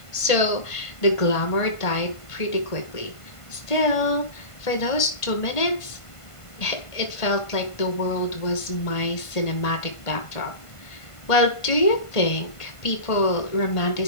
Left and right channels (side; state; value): right; late; 1.5 ms